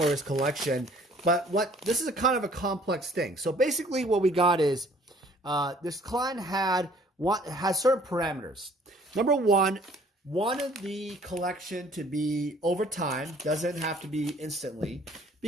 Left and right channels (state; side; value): normal; both; correlation 0.56